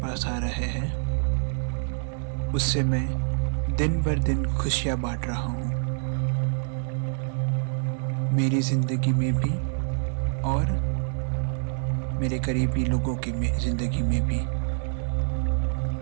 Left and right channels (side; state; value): left; silent; 61 dB below the other